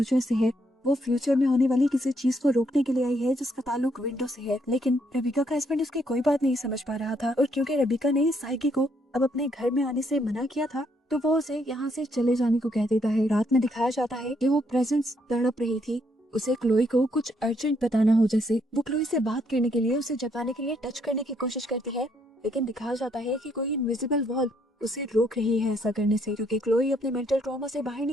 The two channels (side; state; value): both; normal; correlation 0.72